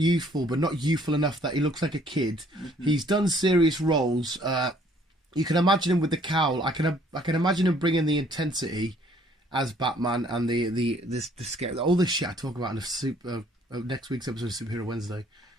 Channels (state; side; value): normal; both; correlation 0.61